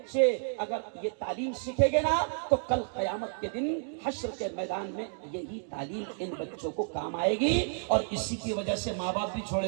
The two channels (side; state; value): left; silent; digital silence